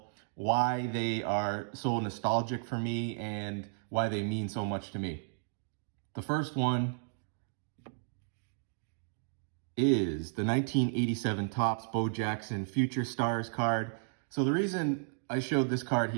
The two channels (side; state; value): left; silent; digital silence